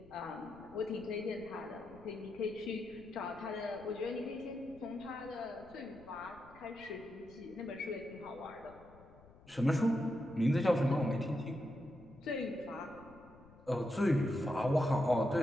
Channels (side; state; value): left; noise; rumble, 23 dB below the sound